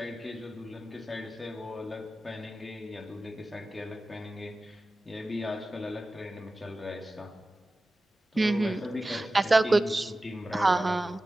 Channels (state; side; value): normal; both; correlation 0.95